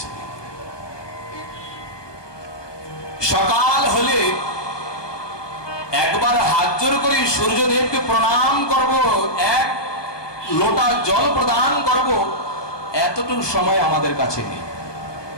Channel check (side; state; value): right; late; 1.2 ms